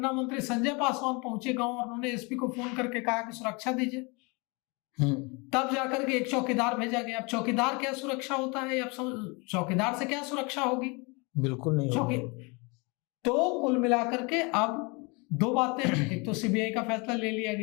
मंत्री संजय पासवान पहुंचे गांव और उन्होंने एसपी को फोन करके कहा कि सुरक्षा दीजिए, तब जाकर के एक चौकीदार भेजा गया। अब चौकीदार क्या सुरक्षा होता है? अब चौकीदार से क्या सुरक्षा होगी? बिल्कुल नहीं होगी। तो कुल मिलाकर के अब दो बातें, एक तो सीबीआई का फैसला ले लिया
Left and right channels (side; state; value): right; quieter; 29.1 dB